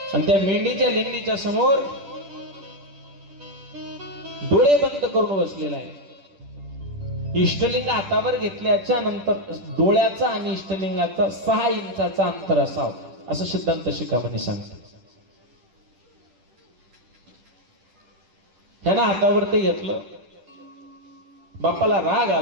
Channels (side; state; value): left; late; 10 ms